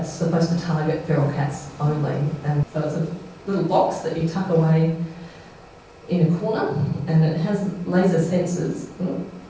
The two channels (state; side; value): identical; both; correlation 1.00